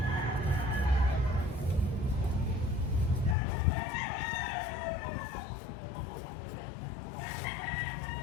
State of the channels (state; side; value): drops out; right; at 3.4 s